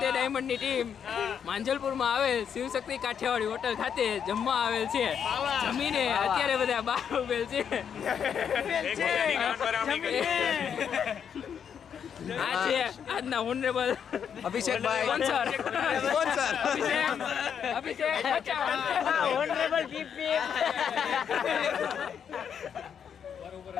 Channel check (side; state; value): right; quieter; 7.8 dB